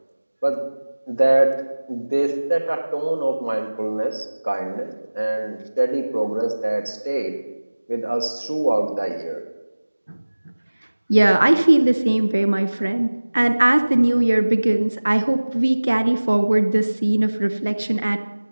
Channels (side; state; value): both; inverted; correlation -1.00